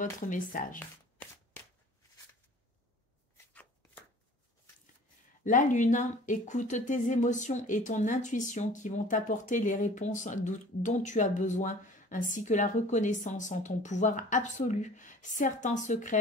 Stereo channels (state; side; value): normal; both; correlation 0.47